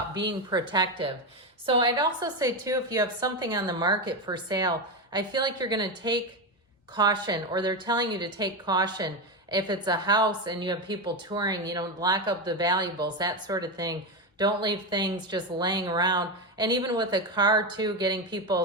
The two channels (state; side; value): normal; both; correlation 0.12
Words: being protective. So I'd also say, too, if you have something on the market for sale, I feel like you're going to take caution, or they're telling you to take caution. If it's a house and you have people touring, you know, lock up the valuables, that sort of thing. Don't leave things just laying around. And even with a car, too, getting